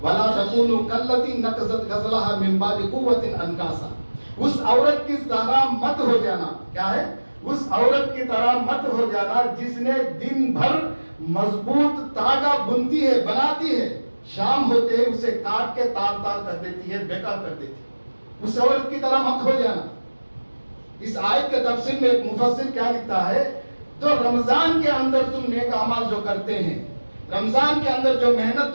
وَلَا تَكُونُوا كَالَّتِي نَقَضَتْ غَزْلَهَا مِن بَعْدِ قُوَّةٍ أَنْكَاثًا. اس عورت کی طرح مت ہو جانا. کیا ہے، اس عورت کی طرح مت ہو جانا جس نے دن بھر مضبوط تاگا بنتی ہے، بناتی ہے، شام ہوتے ہی اسے کاٹ کے تار تار کر دیتی ہے، بیکار کر دیتی ہے. اس عورت کی طرح مت ہو جانا. اس آیت کے تفسیر میں ایک مفسر کیا لکھتا ہے، تو رمضان کے اندر تم نیک اعمال جو کرتے ہیں، رمضان کے اندر جو محنت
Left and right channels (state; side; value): inverted; both; correlation -1.00